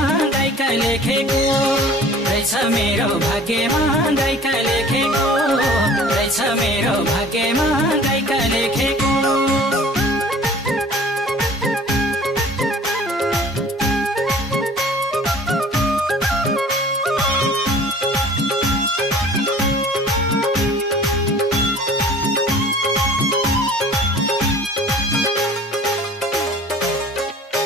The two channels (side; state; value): both; normal; correlation 0.47